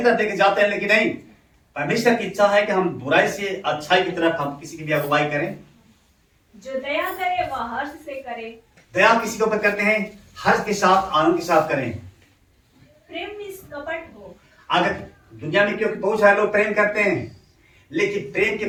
तरफ लेके जाते हैं, लेकिन नहीं, परमेश्वर की इच्छा है कि हम बुराई से अच्छाई की तरफ हम किसी की भी अगुवाई करें। जो दया करे वह हर्ष से करे। दया किसी के ऊपर करते हैं, हर्ष के साथ, आनंद के साथ करें। प्रेम निष्कपट हो। अगर दुनिया में क्योंकि बहुत सारे लोग प्रेम करते हैं, लेकिन प्रेम के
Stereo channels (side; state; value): both; identical; correlation 1.00